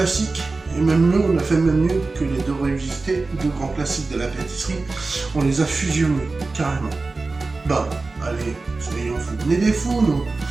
Et même mieux, on a fait même mieux que les 2 revisités, 2 grands classiques de la pâtisserie. On les a fusionnés, carrément. Bah, allez, soyons fous. Venez des fous, nous.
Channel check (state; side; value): quieter; left; 3.6 dB